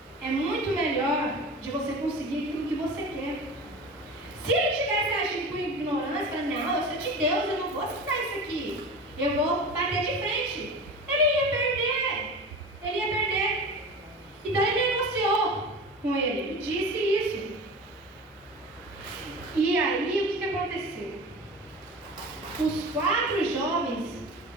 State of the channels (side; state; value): both; normal; correlation 0.33